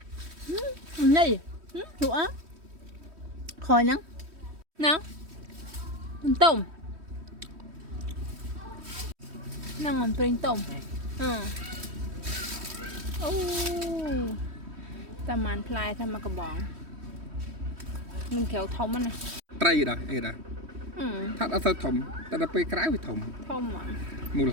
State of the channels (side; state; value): left; late; 3.1 ms